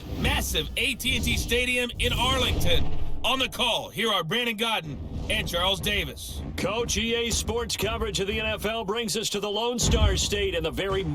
Massive AT&T Stadium in Arlington. On the call, here are Brandon Godden and Charles Davis. Coach, EA Sports coverage of the NFL brings us to the Lone Star State and the very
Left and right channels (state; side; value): identical; both; correlation 1.00